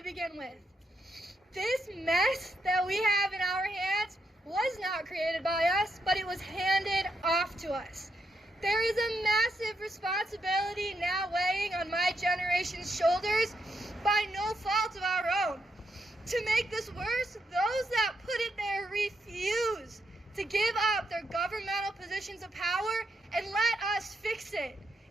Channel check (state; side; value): normal; both; correlation 0.81